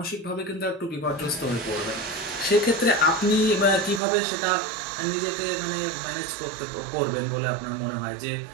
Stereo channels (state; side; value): drops out; left; at 4.0 s